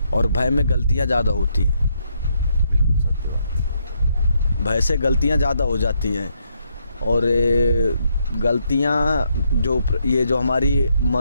और भय में गलतियाँ ज़्यादा होती हैं, भय से गलतियाँ ज़्यादा हो जाती हैं। और गलतियाँ जो हमारी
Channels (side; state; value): both; inverted; correlation -0.76